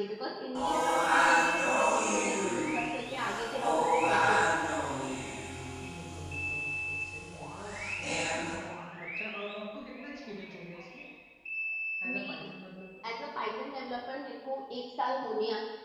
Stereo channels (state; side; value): identical; both; correlation 1.00